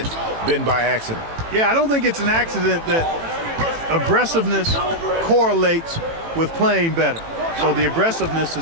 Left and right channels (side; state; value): left; late; 18 ms